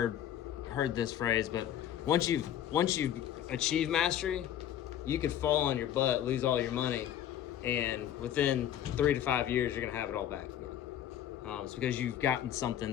heard this phrase, but once you've achieved mastery, you could fall on your butt, lose all your money, and within 3 to 5 years, you're gonna have it all back again. It's because you've gotten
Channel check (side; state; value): right; quieter; 10.8 dB